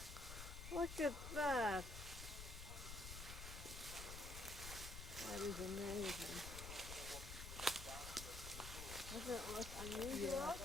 Look at that. That is amazing. Doesn't it look unusual?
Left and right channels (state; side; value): noise; left; rumble, 8 dB below the sound